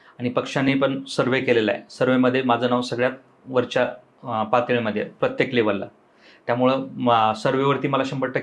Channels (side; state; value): both; identical; correlation 1.00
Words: आणि पक्षाने पण सर्वे केलेला आहे. सर्वेमध्ये माझं नाव सगळ्यात वरच्या पातळीमध्ये प्रत्येक लेवलला. त्यामुळं सर्वेवरती मला